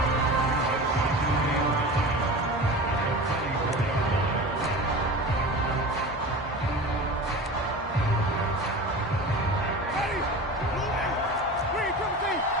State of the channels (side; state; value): both; normal; correlation 0.33